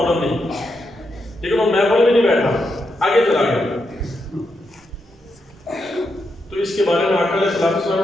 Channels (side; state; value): both; normal; correlation 0.83